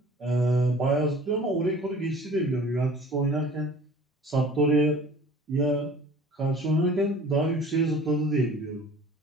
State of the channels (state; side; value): normal; both; correlation 0.47